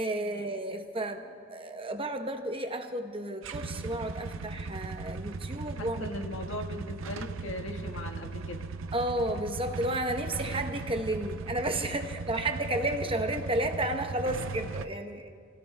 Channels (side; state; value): both; normal; correlation 0.33